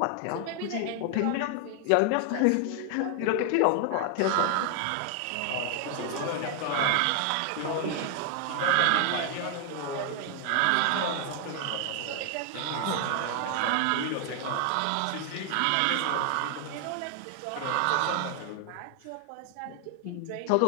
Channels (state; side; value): different; both; correlation 0.00